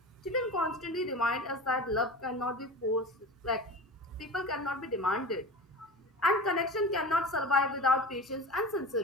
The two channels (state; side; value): normal; both; correlation 0.31